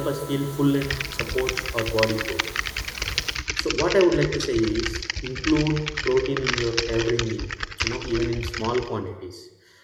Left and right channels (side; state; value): both; identical; correlation 1.00